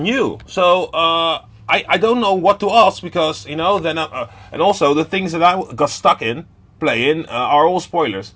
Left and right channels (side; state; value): both; identical; correlation 1.00